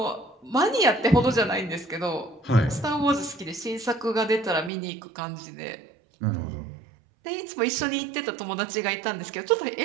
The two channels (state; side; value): drops out; left; at 4.7 s